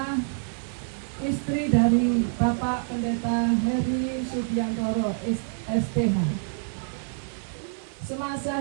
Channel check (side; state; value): left; silent; 60 dB below the other